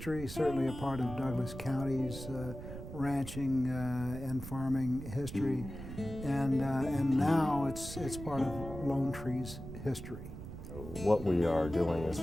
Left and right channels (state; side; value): noise; right; rumble, 10 dB below the sound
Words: certainly a part of Douglas County's ranching and farming history, and now it's part of Lone Tree's history. What we are doing is